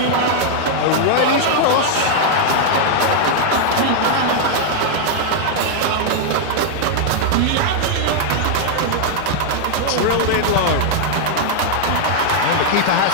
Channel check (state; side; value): different; both; correlation 0.00